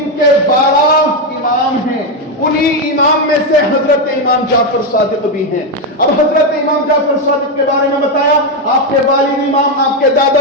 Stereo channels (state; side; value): normal; both; correlation 0.06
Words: کے 12 امام ہیں، انہی امام میں سے حضرت امام جعفر صادق بھی ہیں۔ اب حضرت امام جعفر صادق کے بارے میں بتایا، آپ کے والد امام، آپ کے